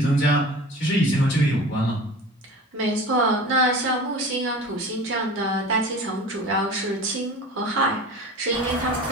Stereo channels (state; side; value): normal; both; correlation 0.37